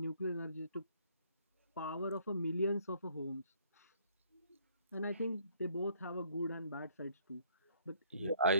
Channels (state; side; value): inverted; both; correlation -0.63